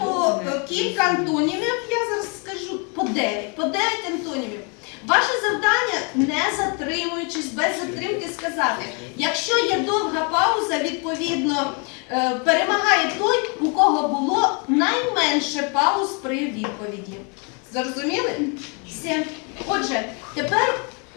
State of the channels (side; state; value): right; quieter; 34.7 dB